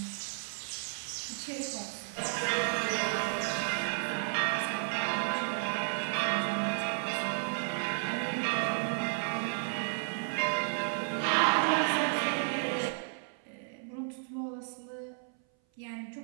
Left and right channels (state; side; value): silent; left; 56 dB below the other